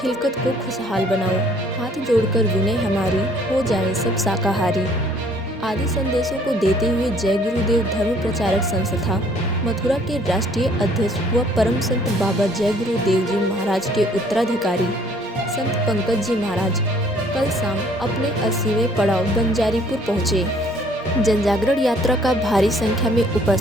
को खुशहाल बनाओ, हाथ जोड़कर विनय हमारी, हो जाए सब शाकाहारी। आदि संदेशों को देते हुए जय गुरुदेव धर्म प्रचारक संस्था मथुरा के राष्ट्रीय अध्यक्ष व परम संत बाबा जय गुरुदेव जी महाराज के उत्तराधिकारी संत पंकज जी महाराज कल शाम अपने 80वें पड़ाव बंजारीपुर पहुँचे। जनजागरण यात्रा का भारी संख्या में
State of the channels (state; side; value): normal; both; correlation 0.59